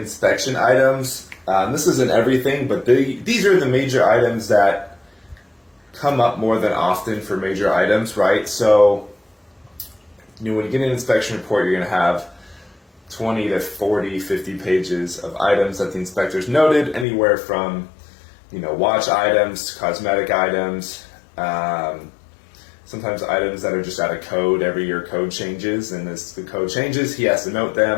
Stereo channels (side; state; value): right; drops out; at 17.1 s